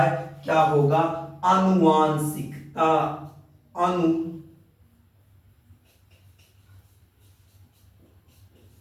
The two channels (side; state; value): both; identical; correlation 1.00